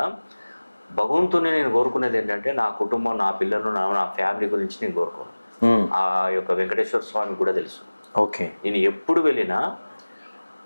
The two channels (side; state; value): both; inverted; correlation -1.00